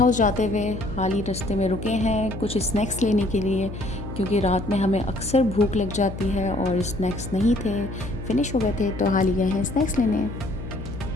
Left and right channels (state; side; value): noise; left; hum, 9 dB below the sound